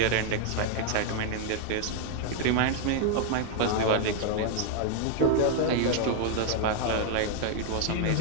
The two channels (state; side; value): different; both; correlation 0.00